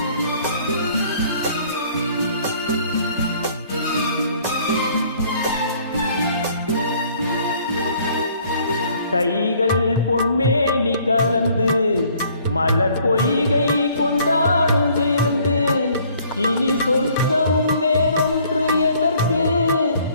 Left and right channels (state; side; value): inverted; both; correlation -0.59